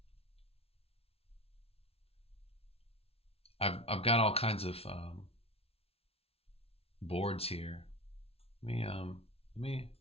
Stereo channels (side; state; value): right; late; 0.29 ms